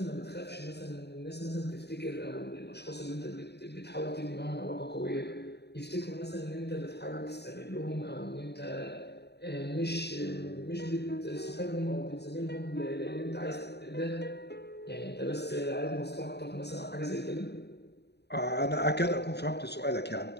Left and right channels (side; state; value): right; late; 0.48 ms